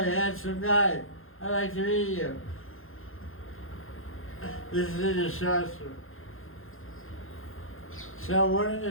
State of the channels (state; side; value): late; right; 0.60 ms